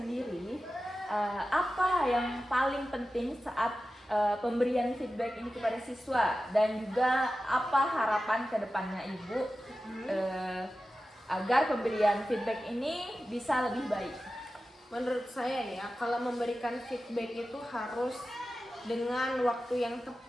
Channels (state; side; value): normal; both; correlation 0.94